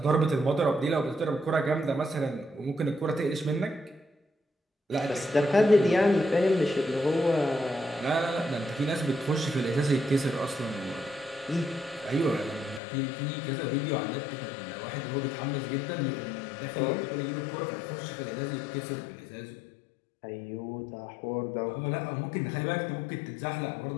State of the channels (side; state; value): right; drops out; at 12.8 s